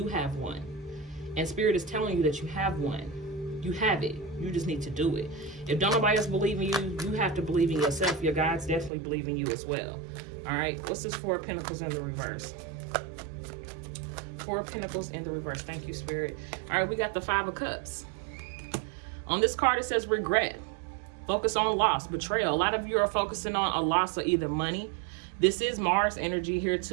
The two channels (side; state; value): left; drops out; at 8.9 s